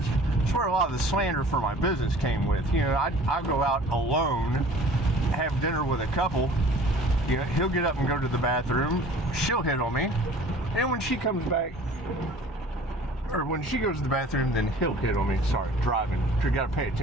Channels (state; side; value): normal; both; correlation 0.48